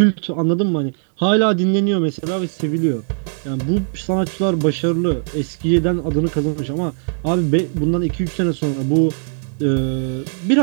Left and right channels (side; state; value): left; silent; 66 dB below the other